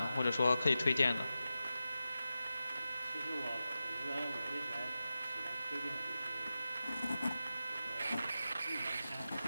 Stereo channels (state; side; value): inverted; both; correlation -0.92